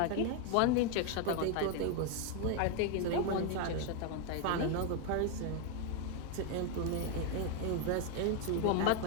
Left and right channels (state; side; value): different; both; correlation 0.01